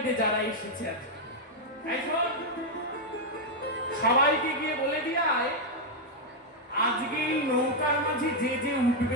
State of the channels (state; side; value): normal; both; correlation -0.01